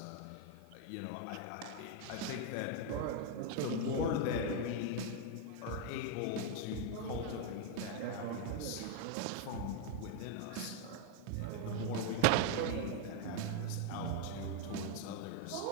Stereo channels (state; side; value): different; both; correlation 0.00